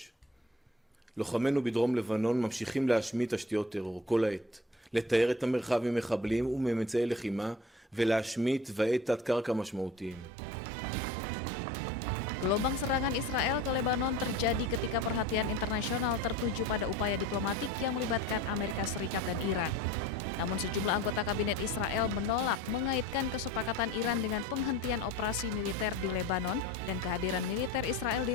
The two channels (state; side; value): normal; both; correlation 0.42